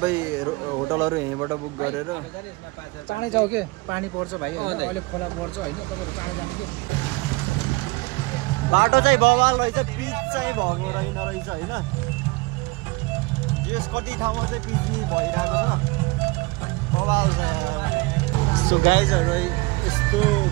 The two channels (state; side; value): quieter; left; 24.1 dB